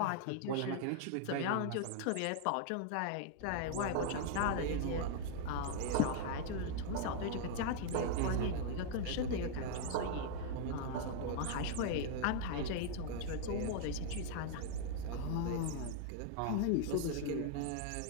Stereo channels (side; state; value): both; different; correlation -0.01